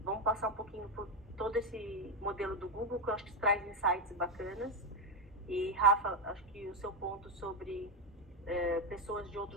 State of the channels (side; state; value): both; normal; correlation 0.08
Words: vamos passar um pouquinho por todo esse modelo do Google, que eu acho que traz insights bacanas. E, Rafa, acho que o seu ponto sobre pessoas de